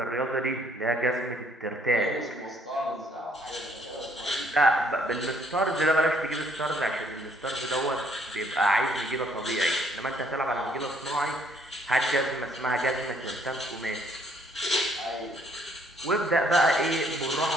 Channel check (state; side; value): normal; both; correlation 0.65